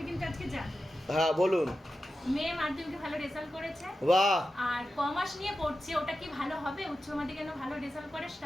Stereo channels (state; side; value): normal; both; correlation 0.91